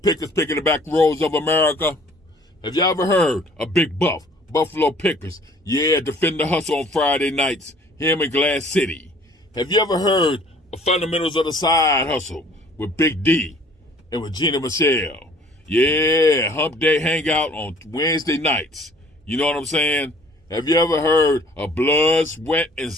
picking the back roads of America? Have y'all ever heard of Big Buff, Buffalo Pickers? Yeah, defend the hustle on Friday nights, him in Glass City. Have you ever heard of Fundamentals of the Side Hustle with Big D and Regina Michelle? Yeah, Hump Day Hangout on Wednesday nights. You know what I'm saying? Have you ever heard of Blood, Sweat, and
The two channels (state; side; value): normal; both; correlation 0.54